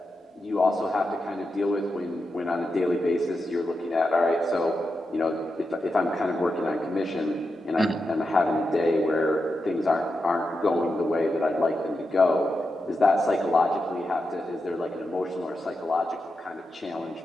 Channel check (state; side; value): normal; both; correlation 0.88